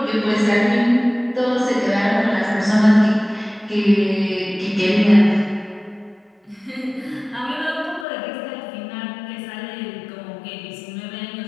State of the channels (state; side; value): drops out; right; at 8.1 s